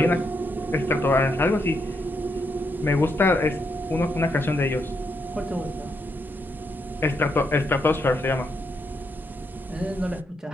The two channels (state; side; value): normal; both; correlation 0.79